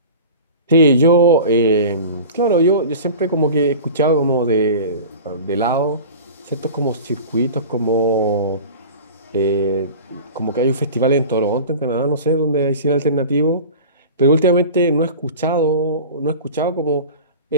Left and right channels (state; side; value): inverted; both; correlation -0.36